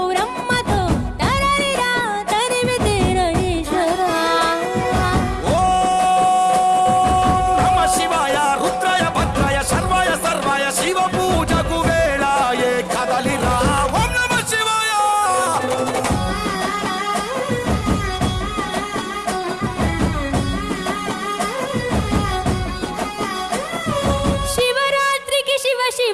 తరలిరా తరివి తీర ఈశ్వర నమ శివాయ రుద్రాయ భద్రాయ సర్వాయ సర్వాయ శివ పూజకు వేళాయే కదలిరా ఓం నమ శివాయ శివరాత్రికి శివ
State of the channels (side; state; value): both; identical; correlation 1.00